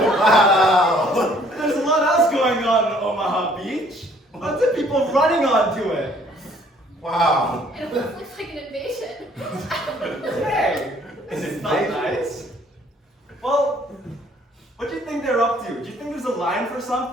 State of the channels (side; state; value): both; normal; correlation 0.60